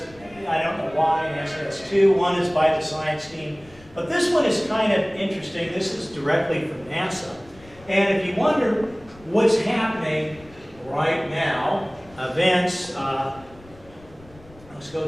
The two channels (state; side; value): noise; left; rumble, 24 dB below the sound